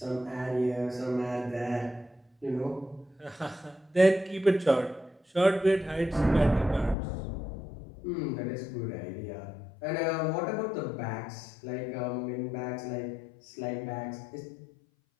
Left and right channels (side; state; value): right; drops out; at 7.0 s